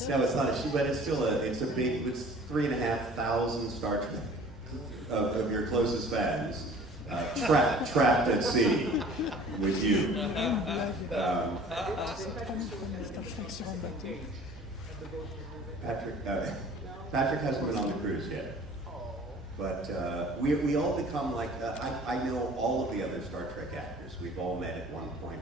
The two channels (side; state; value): both; normal; correlation 0.49